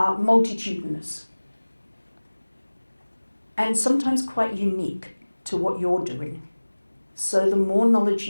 multitudinous and sometimes quite unique to what you're doing. So the more knowledge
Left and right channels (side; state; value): both; inverted; correlation -1.00